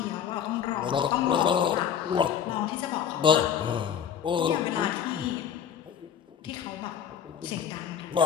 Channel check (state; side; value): quieter; right; 8.5 dB